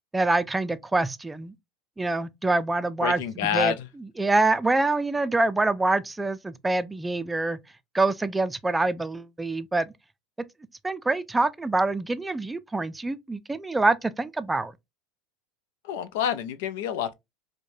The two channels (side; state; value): both; normal; correlation 0.84